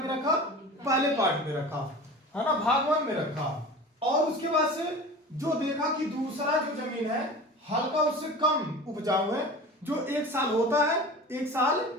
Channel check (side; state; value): both; normal; correlation 0.36